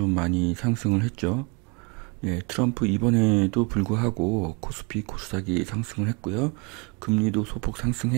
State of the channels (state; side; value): quieter; left; 29.3 dB